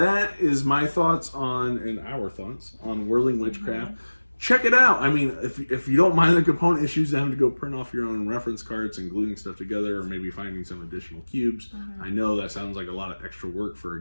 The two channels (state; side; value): inverted; both; correlation -1.00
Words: is my thoughts and our thoughts on Whirling Witchcraft. Check it out. I mean, if you don't mind the component issues, having to go print off your own reference cards and gluing stuff together, or maybe finding some additional cubes, I know that sounds like a lot of extra work for a